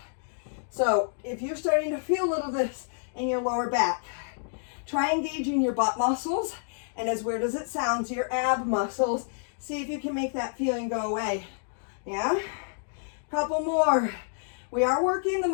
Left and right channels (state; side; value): silent; right; digital silence